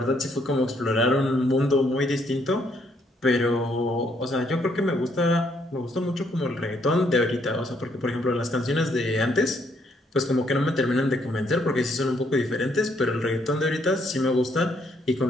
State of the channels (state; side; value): normal; both; correlation 0.70